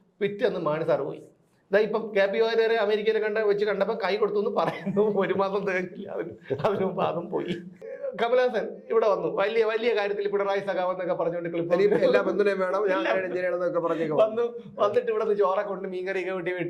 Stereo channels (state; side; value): identical; both; correlation 1.00